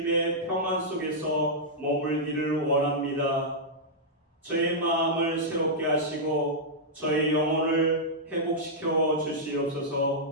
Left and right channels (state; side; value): normal; both; correlation -0.09